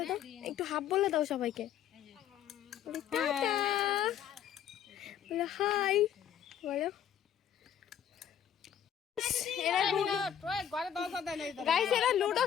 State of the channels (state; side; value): quieter; right; 9.6 dB